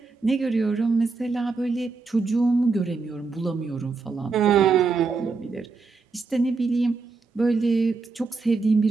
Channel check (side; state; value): left; quieter; 4.3 dB